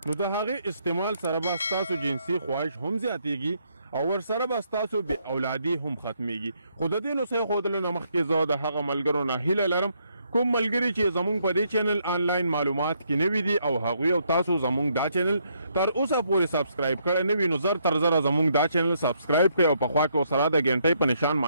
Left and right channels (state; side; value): inverted; both; correlation -0.73